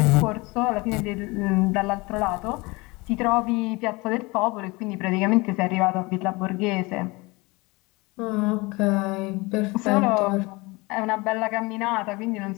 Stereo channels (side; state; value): right; quieter; 24.5 dB